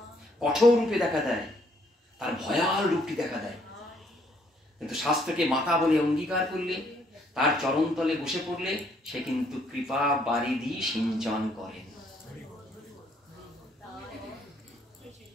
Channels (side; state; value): both; normal; correlation 0.67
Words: কঠোর রূপে দেখা দেয়, তার ভয়াল রূপটি দেখা দেয়। কিন্তু শাস্ত্রকে মাতা বলে অঙ্গীকার করলে, তার চরণতলে বসে পড়লে, সে কিন্তু কৃপা বারিধি সিঞ্চন করেন।